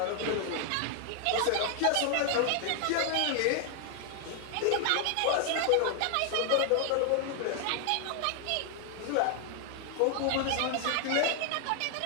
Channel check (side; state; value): both; different; correlation 0.00